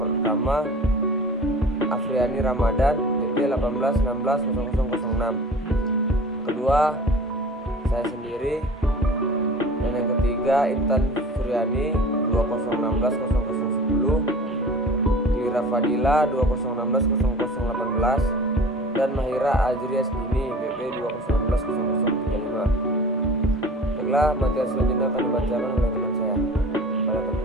Afriani Ramadan, BP 1816006. Kedua, saya sendiri. Dan yang ketiga, Intan Suryani 2016010, Lira Fadila 2016018, dan Mahira Azri Asdini BP 2016035. Baiklah, materi selanjutnya akan dibacakan oleh teman saya. Pada teman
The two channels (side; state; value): both; normal; correlation 0.42